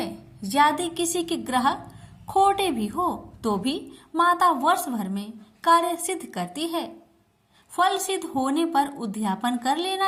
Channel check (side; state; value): both; identical; correlation 1.00